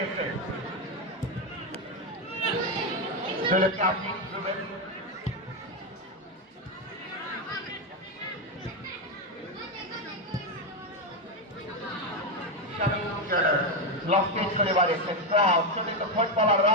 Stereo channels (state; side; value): normal; both; correlation 0.08